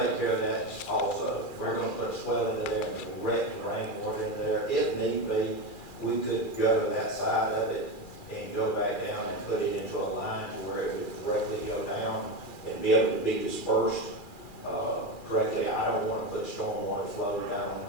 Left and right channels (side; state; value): right; late; 2.4 ms